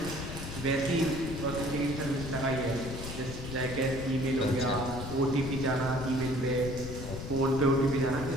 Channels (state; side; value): noise; left; rumble, 8 dB below the sound